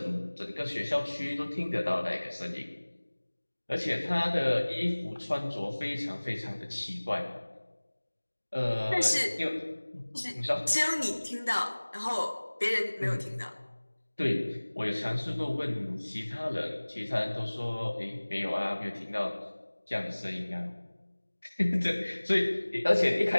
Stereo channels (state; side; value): inverted; both; correlation -1.00